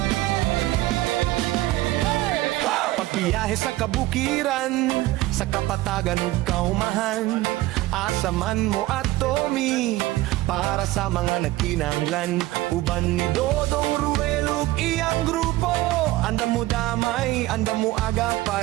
Pagbiyahe sa kabukiran, sa kapatagan ug kaumahan, asaman mo at Tommy para sa mga nagkinahanglan. Uban ni Dodong Roel ug iyang grupo, andam mo damay, andam mo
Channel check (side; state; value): left; quieter; 17.5 dB